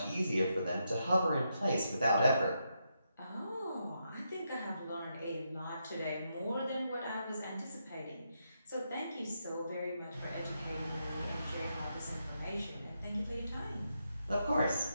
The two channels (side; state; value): both; inverted; correlation -0.82